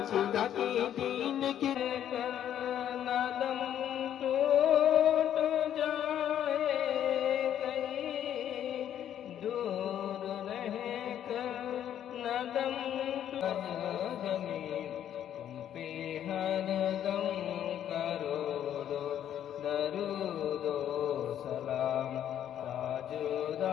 खुदा की दीन की नदम टूट जाए कहीं दूर रहे कर नदम जमीन तुम पे हर दम करोड़ो दरूदो सलाम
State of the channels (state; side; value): quieter; right; 10.4 dB